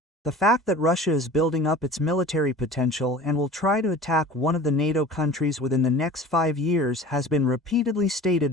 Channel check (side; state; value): both; normal; correlation 0.40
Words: The fact that Russia is building up its military potential and will try to attack one of the NATO countries within the next 5 years has been repeatedly stated